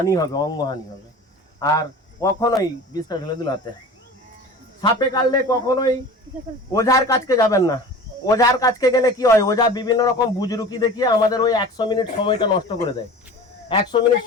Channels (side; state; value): both; normal; correlation 0.38